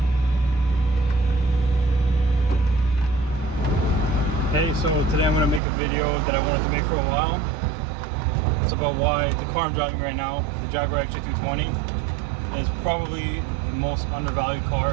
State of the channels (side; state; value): left; drops out; at 5.6 s